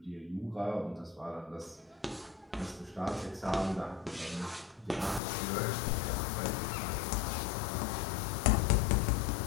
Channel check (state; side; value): drops out; right; at 5.2 s